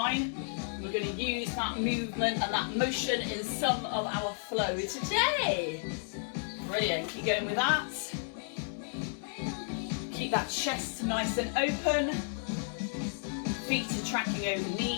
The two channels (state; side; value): silent; right; digital silence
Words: We're going to use that movement and that motion in some of our flow today. Brilliant. Keep going with that. Keep that chest nice and open. Feet are tracking over